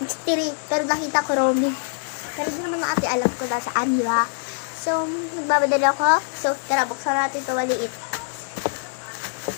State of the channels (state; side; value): silent; right; digital silence